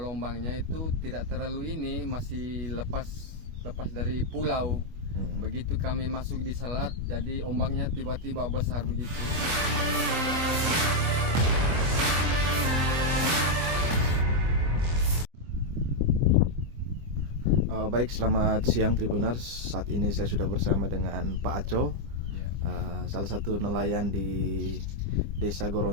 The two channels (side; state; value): left; late; 25 ms